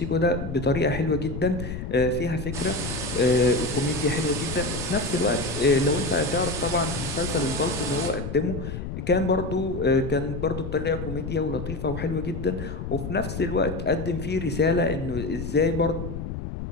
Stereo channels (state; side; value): noise; left; rumble, 6 dB below the sound